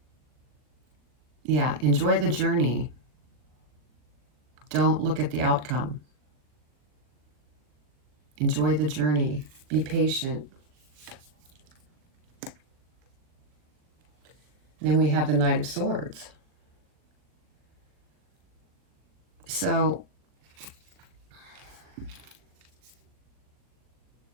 Yeah, enjoy the journey. Don't look at the outcome. Enjoy the journey. Be patient. Then we have the Knight of Swords. So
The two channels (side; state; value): left; late; 40 ms